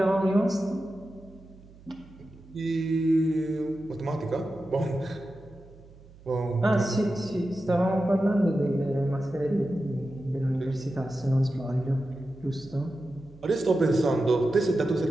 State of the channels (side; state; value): right; noise; hum, 22 dB below the sound